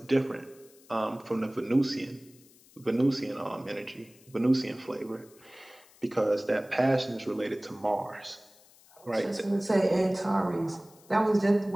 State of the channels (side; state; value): left; noise; hiss, 27 dB below the sound